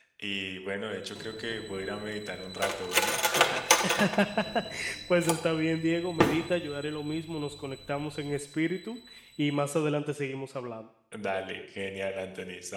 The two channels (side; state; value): both; identical; correlation 1.00